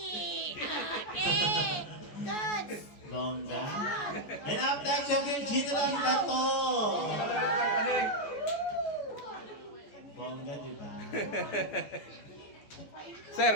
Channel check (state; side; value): late; right; 14 ms